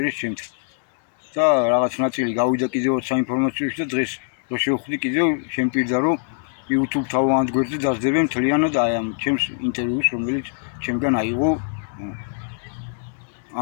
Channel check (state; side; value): silent; right; digital silence